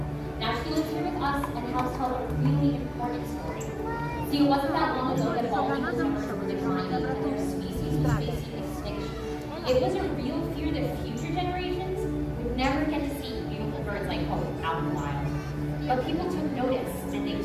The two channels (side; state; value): both; identical; correlation 1.00